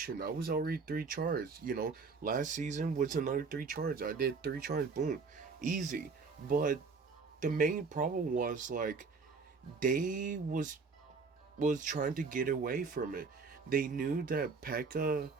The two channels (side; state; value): left; quieter; 4.7 dB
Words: I was already 3 charts. Last season was another 3 charts. I did 3 charts, boom, easy. But the main problem was like they was trying to get away from it. They knew that Pekka